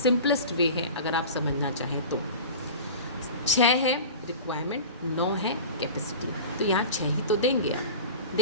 वे है अगर आप समझना चाहें तो। 6 है रिक्वायरमेंट, 9 है कैपेसिटी, तो यहाँ 6 ही तो देंगे आप,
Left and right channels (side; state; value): both; inverted; correlation -0.34